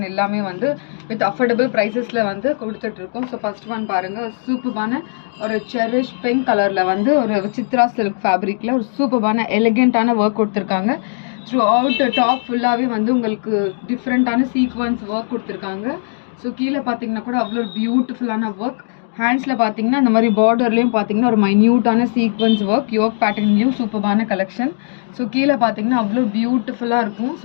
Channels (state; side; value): silent; right; digital silence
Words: எல்லாமே வந்து வித் அஃபோர்டபுள் ப்ரைஸஸில் வந்து கொடுத்துட்ருக்கோம். ஸோ ஃபர்ஸ்ட் ஒன் பாருங்கள், சூப்பரான ஒரு செரிஷ் பிங்க் கலரில் வந்து ஒரு சித்ரா சில்க் ஃபேப்ரிக்கில் ஒரு சூப்பரான எலிகென்ட்டான ஒர்க் கொடுத்துருக்காங்க. த்ரூ அவுட் டாப் ஃபுல்லாகவே வந்து உங்களுக்கு டிஃப்ரெண்ட்டான சீக்வன்ஸ் ஒர்க் கொடுத்துருக்காங்க. ஸோ கீழே பார்த்தீங்கன்னா கூட அவ்வளோ பியூட்டிஃபுல்லான ஒர்க். ஹேண்ட்ஸில் பார்த்தீங்கன்னா இந்த மாதிரி பார்டர்லேயும் பார்த்தீங்கன்னா ஒரு மைன்யூட்டான சீக்வன்ஸ் ஒர்க், யோக் பேட்டர்ன்லேயும் சூப்பரான கலெக்ஷன். ஸோ கீழே பார்த்தீங்கன்னா அவ்வளோ பியூட்டிஃபுல்லாக இருக்கும்.